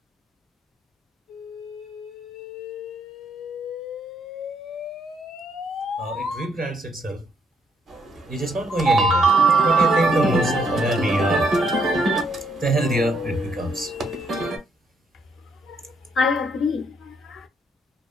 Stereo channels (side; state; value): both; normal; correlation 0.72